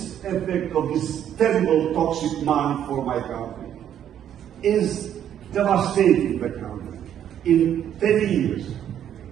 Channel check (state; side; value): quieter; left; 10.1 dB